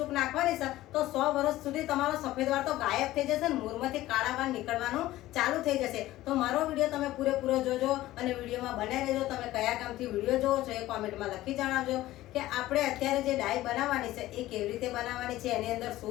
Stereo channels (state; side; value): quieter; right; 15.9 dB